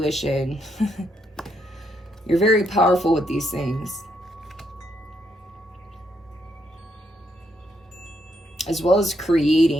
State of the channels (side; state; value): both; normal; correlation 0.76